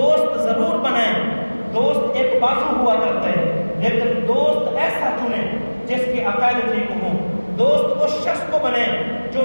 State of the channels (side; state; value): both; inverted; correlation -1.00